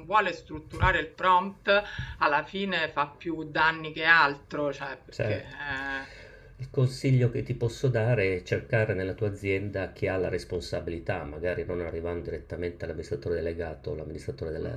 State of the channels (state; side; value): identical; both; correlation 1.00